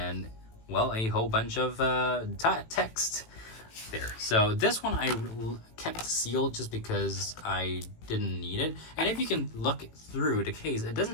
well, a whole bunch of text there. So this one I kept sealed just because I didn't need it. And if you can look through the case, it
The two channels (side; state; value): right; late; 18 ms